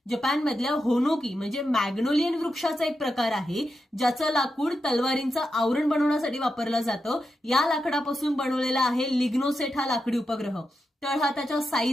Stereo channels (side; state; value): both; normal; correlation 0.88